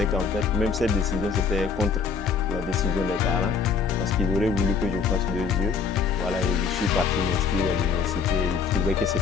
qu'en fait, même cette décision, c'était contre la décision des parents, parce qu'ils auraient voulu que je fasse 2 yeux. Voilà, et je suis parti m'inscrire à l'université. Ils trouvaient que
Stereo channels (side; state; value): right; quieter; 5.6 dB